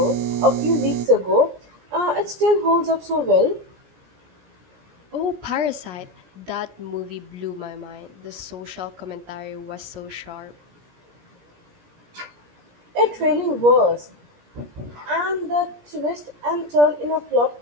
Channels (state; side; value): late; left; 17 ms